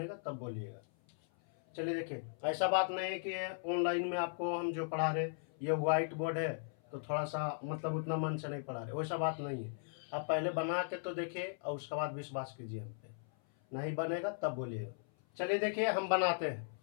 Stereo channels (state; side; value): silent; right; 53 dB below the other